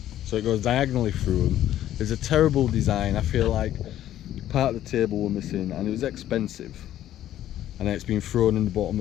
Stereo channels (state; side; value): quieter; right; 12.3 dB